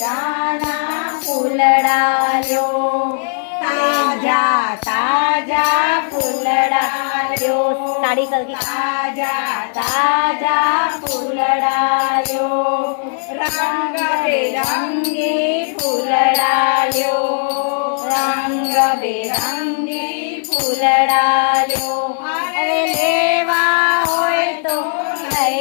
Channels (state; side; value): silent; right; 61 dB below the other